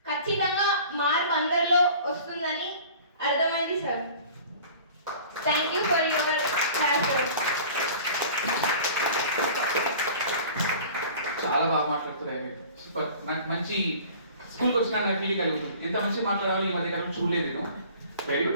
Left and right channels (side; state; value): both; inverted; correlation -0.45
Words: ఖచ్చితంగా మార్పు అందరిలో వస్తుందని అర్థమైంది sir. Thank you for your class. చాలా బాగా మాట్లాడుతున్నాయి, సూపర్. నాకు మంచి స్కూల్కి వచ్చిన ఫీలింగ్ కలుగుతుంది. ఎంత మంచి మాట్లాడాలో ఈ మధ్య కాలం చూడలేదు నేను. Very